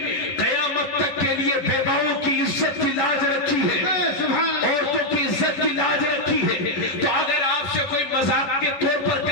قیامت تک کے لیے بیواؤں کی عزت کی لاج رکھی ہے، عورتوں کی عزت کی لاج رکھی ہے۔ تو اگر آپ سے کوئی مذاق کے طور پر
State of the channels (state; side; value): late; right; 10 ms